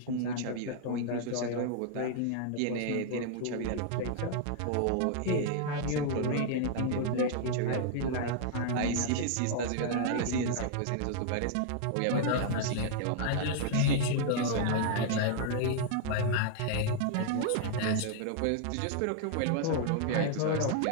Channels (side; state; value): both; different; correlation 0.00